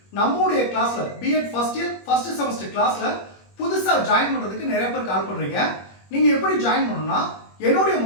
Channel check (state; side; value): late; right; 21 ms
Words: நம்மளுடைய கிளாஸ்ல BEd first year first semester கிளாஸ்ல புதுசா ஜாயின் பண்றதுக்கு நிறைய பேர் கால் பண்றீங்க. நீங்க எப்படி ஜாயின் பண்ணணும்னா என்னுடைய